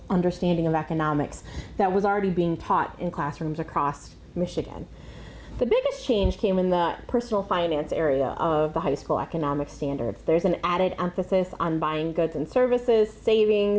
understanding of economics that was already being taught in classrooms across Michigan. The biggest change came in the personal finance area of the high school economic standards. There's an added emphasis on buying goods and services,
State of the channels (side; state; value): both; identical; correlation 1.00